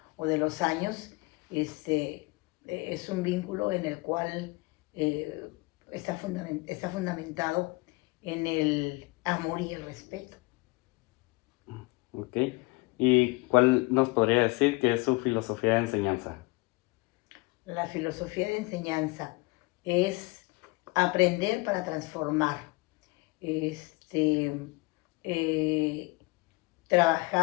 o de los años. Este, es un vínculo en el cual eh, está fundamentado en el amor y el respeto. ¿Ok? ¿Y cuál nos podría decir que es su filosofía de enseñanza? La filosofía de enseñanza es aprender para transformar, este, eh,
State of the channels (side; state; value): right; quieter; 25.0 dB